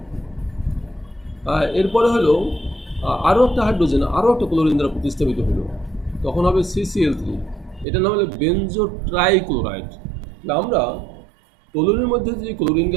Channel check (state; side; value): drops out; left; at 7.9 s